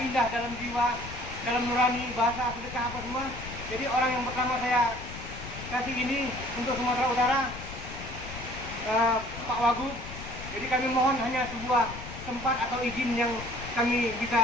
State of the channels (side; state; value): left; noise; rumble, 11 dB below the sound